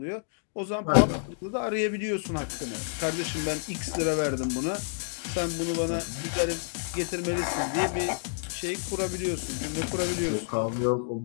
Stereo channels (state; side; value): silent; right; digital silence